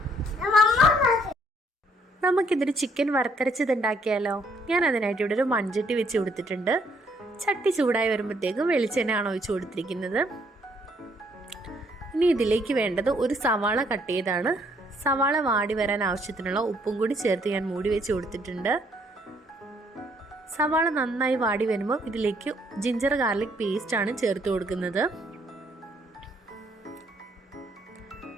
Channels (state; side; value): normal; both; correlation 0.68